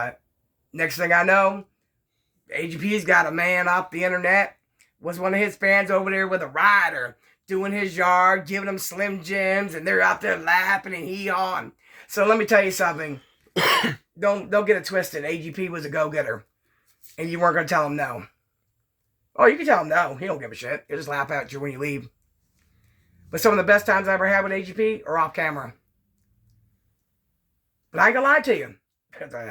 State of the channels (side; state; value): both; identical; correlation 1.00